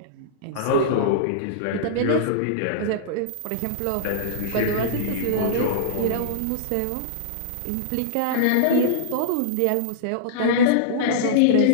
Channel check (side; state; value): both; different; correlation -0.03